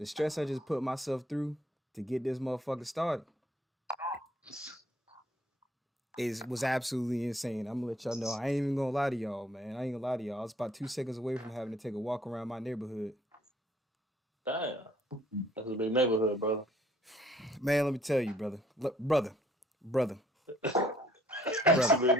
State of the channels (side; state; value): both; normal; correlation 0.61